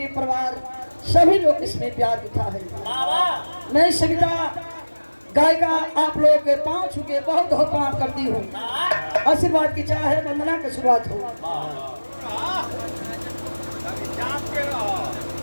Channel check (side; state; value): both; inverted; correlation -1.00